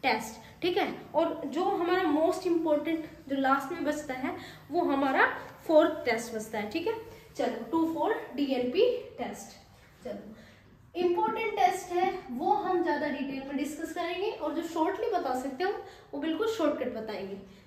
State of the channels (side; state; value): both; identical; correlation 1.00